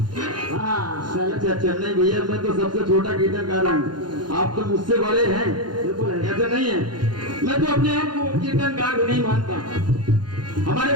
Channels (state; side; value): late; left; 0.71 ms